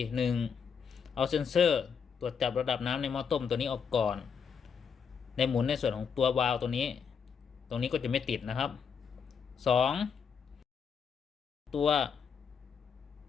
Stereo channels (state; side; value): quieter; right; 6.6 dB